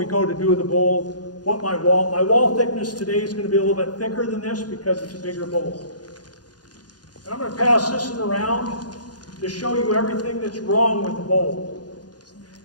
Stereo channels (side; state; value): right; late; 0.69 ms